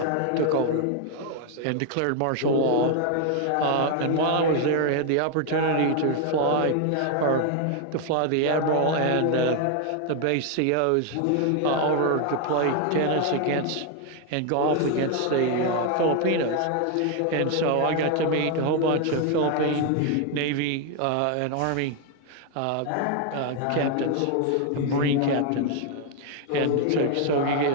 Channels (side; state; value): both; different; correlation 0.01